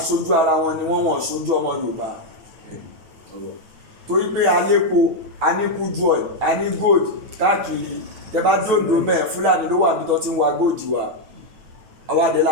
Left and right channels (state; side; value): late; left; 9.2 ms